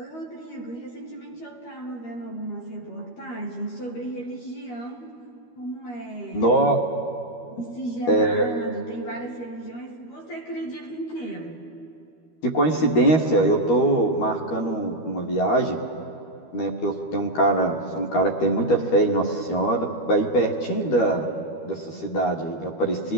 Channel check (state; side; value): late; right; 13 ms